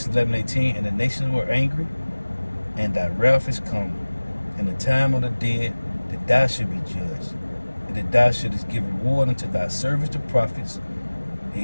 11 and 18. And the nations were angry, and thy wrath is come. In the time of the dead, that thou should be judged, and that thou shouldest give reward unto thy servants, the prophets, the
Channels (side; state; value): both; inverted; correlation -1.00